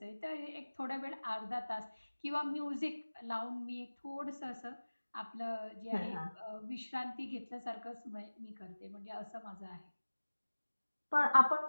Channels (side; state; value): both; inverted; correlation -1.00